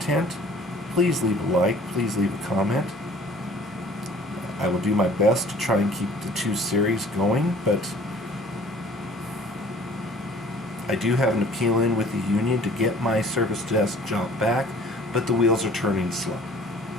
please leave a like, please leave a comment. I will do my best to try and keep the 2 series going, but I do have an appeal in with the union to get my service desk job back, but the wheels are turning slow.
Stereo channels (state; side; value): normal; both; correlation 0.51